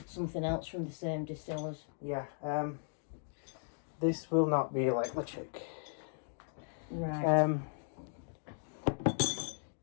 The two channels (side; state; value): right; silent; digital silence